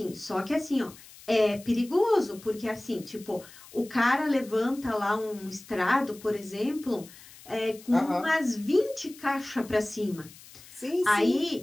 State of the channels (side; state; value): left; noise; hiss, 20 dB below the sound